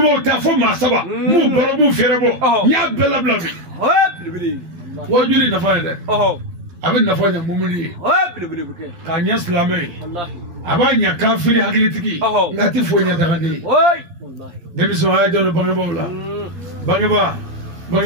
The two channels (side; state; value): left; late; 12 ms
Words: ta fɔ maa 7 m'u balo m'u feere bɔ n y'a bɛɛ labila bi wajuli nafa ye dɛ a bɛ nafa ɲɛ mumuni ye k'a ɲɛ silamɛ ye a b'a ɲɛ kafiri hakilitigi nka a tɛ foyi ɲɛ dagaden ye denmisɛnw a y'a janto bangebaaw la